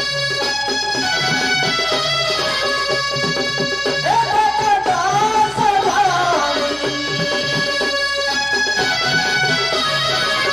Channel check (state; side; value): noise; right; hum, 22 dB below the sound